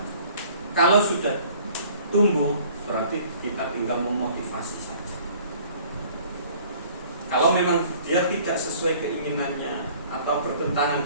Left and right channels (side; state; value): both; inverted; correlation -0.53